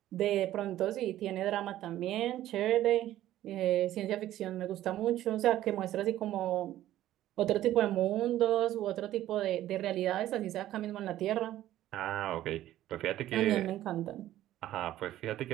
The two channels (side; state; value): left; quieter; 13.6 dB